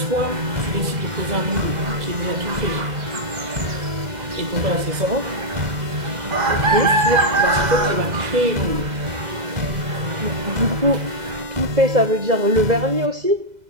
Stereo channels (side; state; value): left; late; 2.0 ms